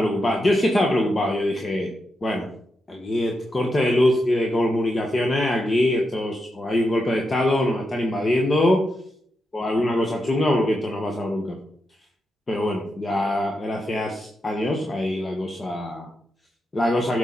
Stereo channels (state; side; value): normal; both; correlation 0.86